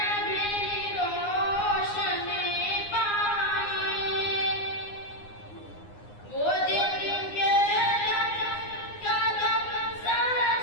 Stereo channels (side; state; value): right; late; 9.7 ms